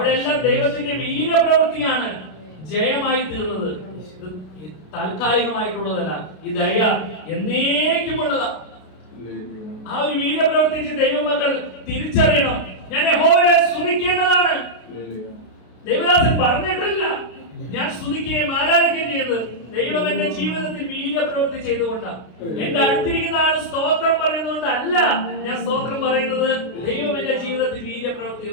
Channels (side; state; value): right; late; 33 ms